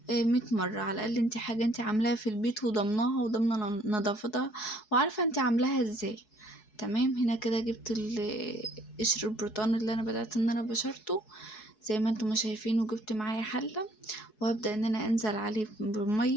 100 مرة. على الاقل انت حاجة انت عاملاها في البيت وضمناها وضمنة نظافتها وعارفة انت عاملاها ازاي. تمام. هنا كده جبت قشر البرتقال اللي انا بدأت ان انا بشرته زي ما انتم شايفين، وجبت معايا حلة، وهبدأ ان انا انزل عليه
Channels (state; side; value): late; right; 4.7 ms